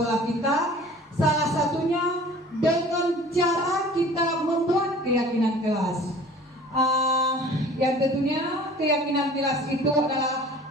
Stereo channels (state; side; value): normal; both; correlation 0.46